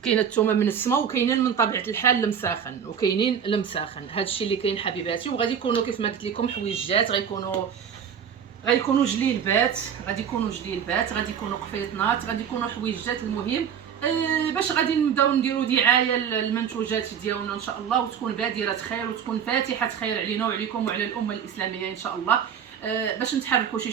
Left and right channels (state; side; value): quieter; left; 8.0 dB